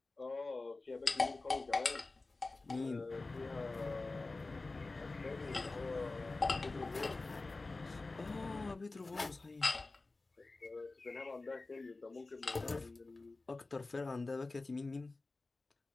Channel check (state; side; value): quieter; right; 3.4 dB